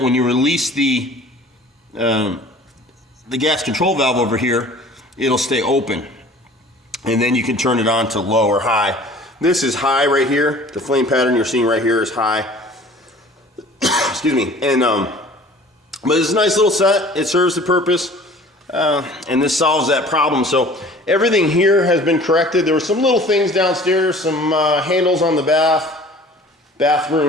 when you release the gas control valve over here, it'll stay open. And then you can turn it on to low or high. This is high right here. The flame pattern you're seeing right here is high. Excuse me. And but it's a nice little set. It serves the purpose. And this solves that problem. So everything here has been corrected. There were some little things downstairs, some handles on the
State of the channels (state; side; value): normal; both; correlation 0.47